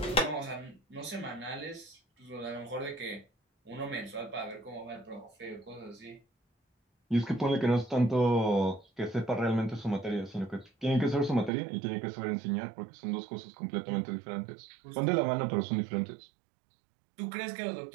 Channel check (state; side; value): drops out; left; at 11.5 s